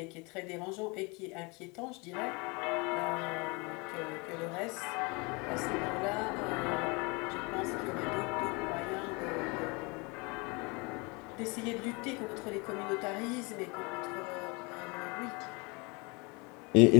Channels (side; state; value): right; quieter; 28.5 dB